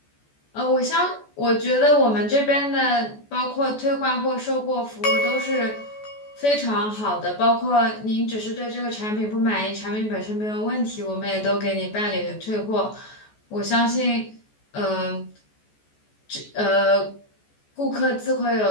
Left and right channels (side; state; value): right; late; 14 ms